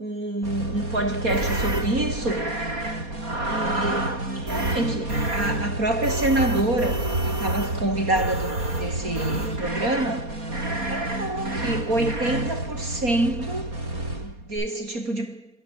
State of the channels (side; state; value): left; late; 4.2 ms